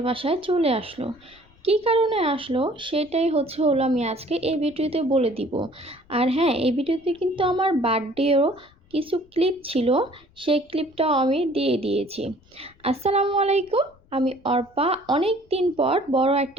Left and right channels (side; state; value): left; noise; rumble, 30 dB below the sound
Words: বাসায় চলে আসলো। কী কারণে আসলো সেটাই হলো আমি আজকে এই ভিডিওতে বলে দিব। আর হ্যাঁ, এই ভিডিওতে কিন্তু আমার বার্থডেও কিছু ক্লিপ ছিল, সেই ক্লিপটাও আমি দিয়ে দিয়েছি। আসসালামু আলাইকুম, আমি অর্পা অনেক দিন পর বড়